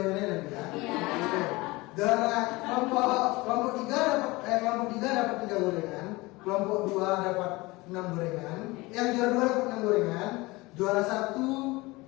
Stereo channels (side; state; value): right; quieter; 22.4 dB